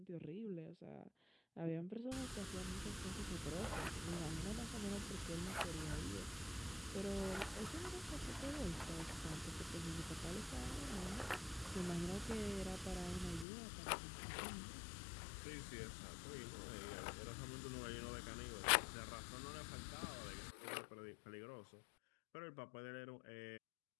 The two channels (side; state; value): right; drops out; at 13.5 s